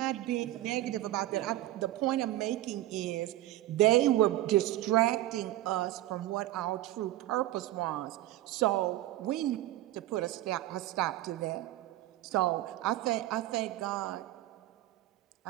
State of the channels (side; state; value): left; quieter; 15.5 dB